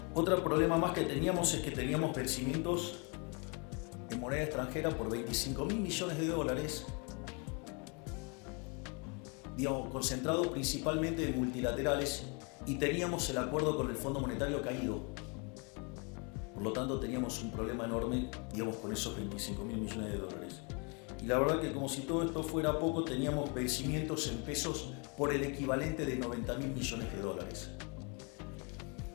Otro problema más que teníamos es que teníamos vencimientos en moneda extranjera por 25.000 millones de dólares, concentrado principalmente en multilaterales, y teníamos el acuerdo con el Fondo Monetario caído. Por lo tanto, teníamos un problema enorme, con esos 25.000 millones de dólares. Y la verdad que, como si todo esto fuera poco, teníamos vencimientos en pesos por el equivalente de 90.000 millones de dólares.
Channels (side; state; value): right; quieter; 33.6 dB